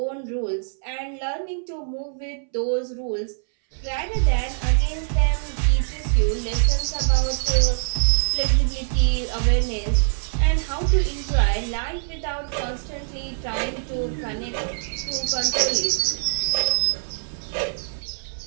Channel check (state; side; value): silent; left; 63 dB below the other